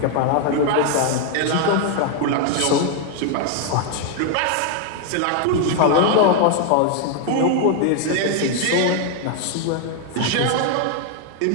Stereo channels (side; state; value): both; different; correlation 0.00